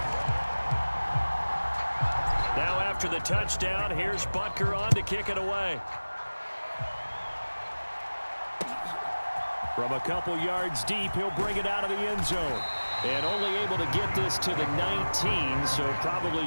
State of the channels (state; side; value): inverted; both; correlation -1.00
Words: Now after the touchdown, here's Butker on to kick it away. From a couple yards deep, he'll bring it out of the end zone. And only able to get this to the 19, so probably